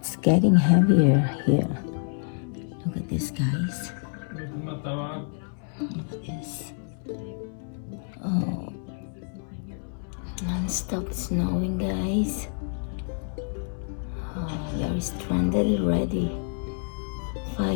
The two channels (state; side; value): silent; right; 56 dB below the other